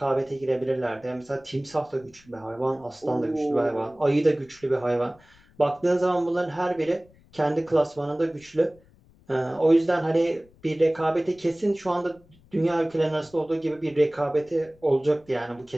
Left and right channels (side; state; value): left; noise; rumble, 28 dB below the sound